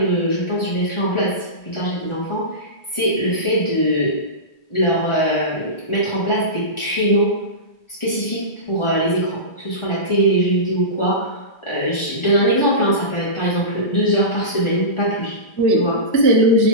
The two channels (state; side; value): late; right; 1.4 ms